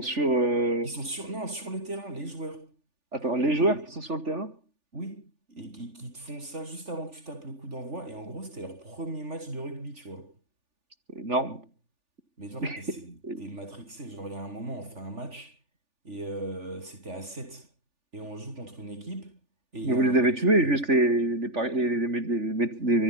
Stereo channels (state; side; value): late; left; 3.4 ms